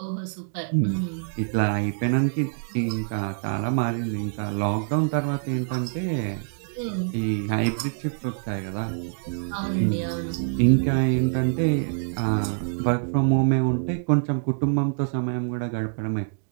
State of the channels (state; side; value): silent; left; digital silence